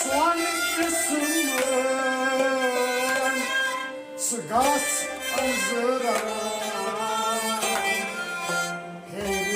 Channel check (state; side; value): identical; both; correlation 1.00